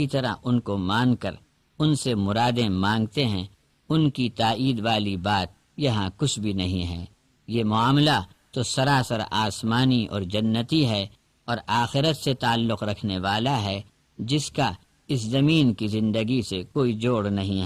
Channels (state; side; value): identical; both; correlation 1.00